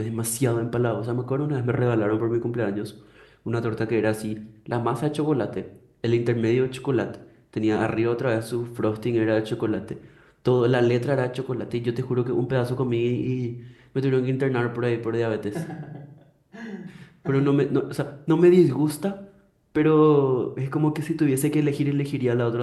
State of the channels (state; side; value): identical; both; correlation 1.00